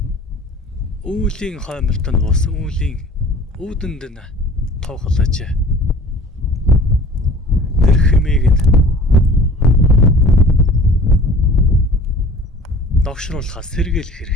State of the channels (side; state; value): both; normal; correlation 0.46